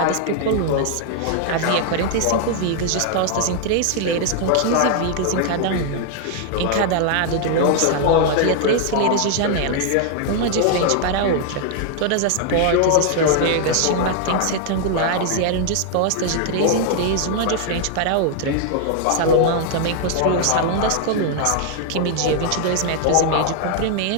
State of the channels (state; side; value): different; both; correlation 0.00